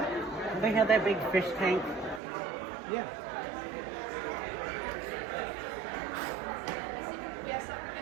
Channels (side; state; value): left; drops out; at 2.2 s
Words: They have that big fish tank. Yeah.